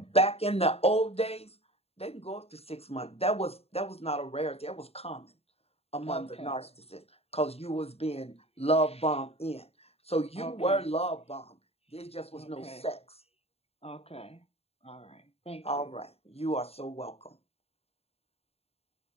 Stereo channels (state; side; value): late; right; 0.29 ms